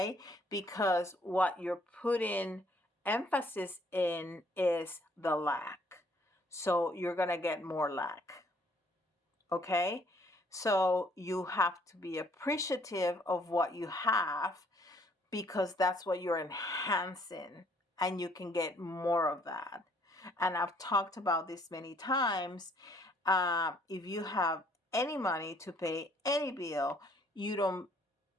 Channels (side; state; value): both; normal; correlation 0.63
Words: Because what you're putting emphasis in is the lack. So you're going to get more lack, okay? So you have to be appreciative of what you have, because that's what you're enhancing, and you can get more of that. And I've talked about this many times. If you have any money to pay any bill, you don't